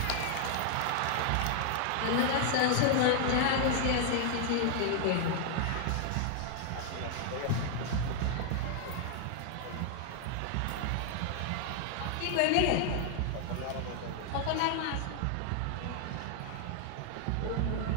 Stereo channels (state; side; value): different; both; correlation 0.00